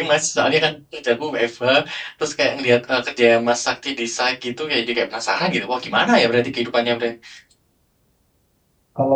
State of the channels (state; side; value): identical; both; correlation 1.00